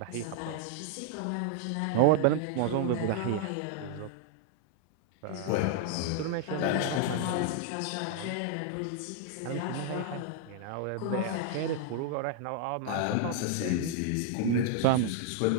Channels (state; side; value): different; both; correlation 0.00